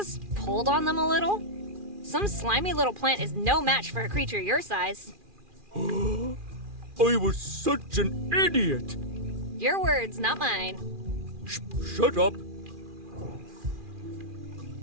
pulled on them a little? Some slimy little plant is no match for a creature your size. I was such an idiot. Your words, not mine. Shut up.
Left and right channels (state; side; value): late; left; 2.4 ms